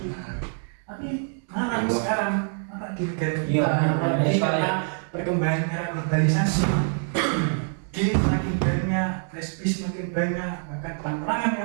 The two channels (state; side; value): silent; left; 56 dB below the other